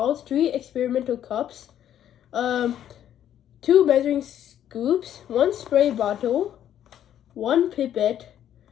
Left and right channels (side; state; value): right; quieter; 10.7 dB